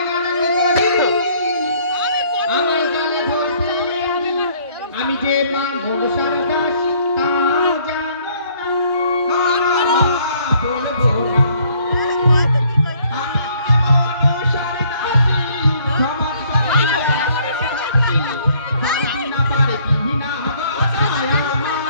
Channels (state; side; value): inverted; both; correlation -0.62